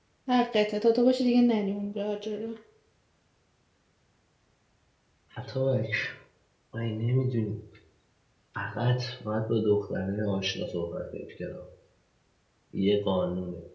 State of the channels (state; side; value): identical; both; correlation 1.00